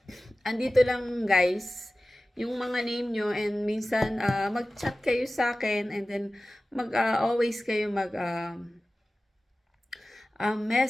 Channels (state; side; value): normal; both; correlation 0.96